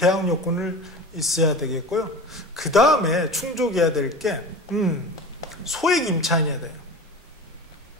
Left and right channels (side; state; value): both; normal; correlation 0.33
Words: 요건을 있어야 되겠고요. 그 다음에 충족해야 될 게 소액 임차인이어야 돼요.